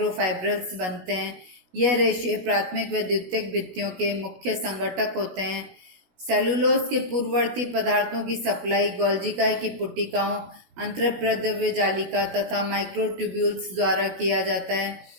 बनते हैं। यह रेशे प्राथमिक व द्वितीयक भित्तियों के मुख्य संगठक होते हैं। सेलुलोज के पूर्ववर्ती पदार्थों की सप्लाई गोल्जिकाई की पुटिकाओं, अंतःप्रद्रव्य जालिका तथा माइक्रोट्यूब्यूल्स द्वारा किया जाता है।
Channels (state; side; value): late; left; 16 ms